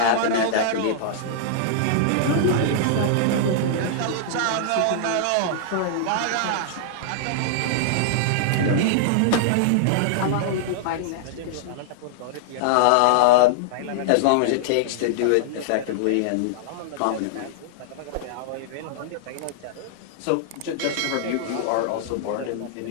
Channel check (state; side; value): different; both; correlation -0.01